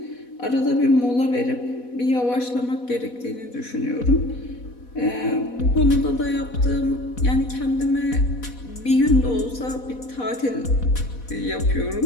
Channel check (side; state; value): right; late; 4.1 ms